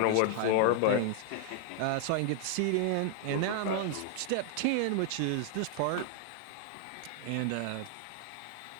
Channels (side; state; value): both; different; correlation 0.00